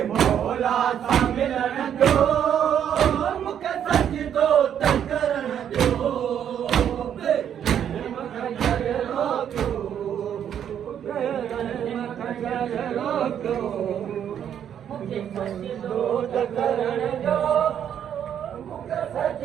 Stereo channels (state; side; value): quieter; left; 9.3 dB